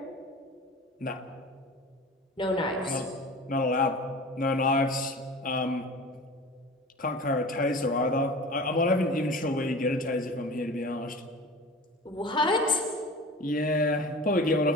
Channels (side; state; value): both; normal; correlation 0.37